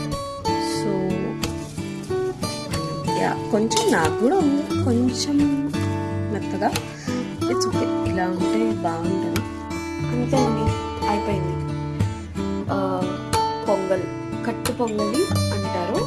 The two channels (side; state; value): both; identical; correlation 1.00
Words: సో యా, కొంచెం నాకు కూడా ఉంది కొంచెం మెత్తగా. ఇట్స్ ఓకే, ఇలా ఉంటే బాగుంటుంది. అంతే అండి, అయిపోయింది. పొంగల్, కట్టు పొంగలి అంటారు.